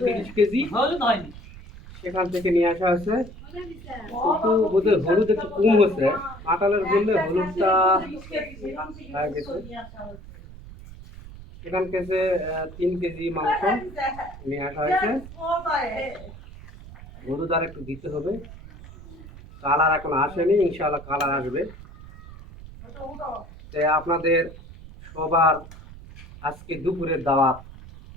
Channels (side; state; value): right; noise; rumble, 16 dB below the sound